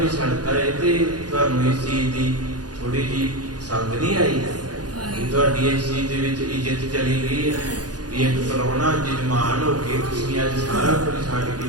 ਛੱਡਤਾ, ਇਹ ਤੇ ਤੁਹਾਨੂੰ ਇਸ ਚੀਜ਼ ਦੀ ਥੋੜੀ ਜਿਹੀ ਸੰਗ ਨਹੀਂ ਆਈ ਕਿ ਤੁਹਾਡੀ ਇਸ ਚੀਜ਼ ਦੇ ਵਿੱਚ ਇੱਜ਼ਤ ਚਲੀ ਗਈ ਹੈ ਵੀ ਇੱਕ ਪ੍ਰਾਹੁਣਾ ਜਜਮਾਨ ਹੋ ਕੇ ਤੁਸੀਂ ਅੱਜ ਸਾਰਾ ਕੁਝ ਛੱਡ ਕੇ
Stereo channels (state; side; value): late; left; 0.69 ms